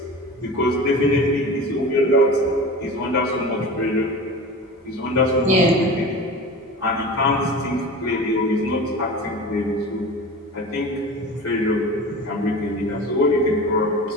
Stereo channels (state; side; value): normal; both; correlation 0.34